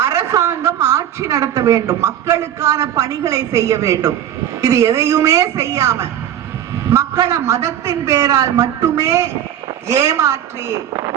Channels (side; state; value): left; quieter; 10.5 dB